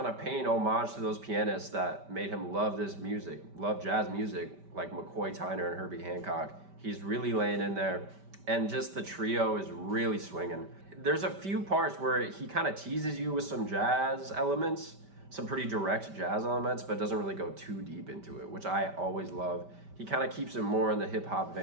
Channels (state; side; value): late; left; 5.1 ms